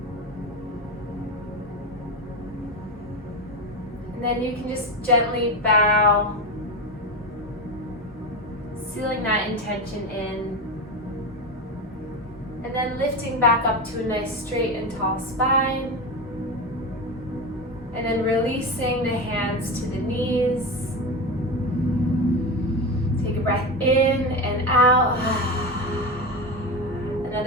And then you can just gently bow, sealing that intention in, and then lifting back up to a nice straight and tall spine, and then releasing the hands to the knees. Take a breath in and out.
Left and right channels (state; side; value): normal; both; correlation 0.19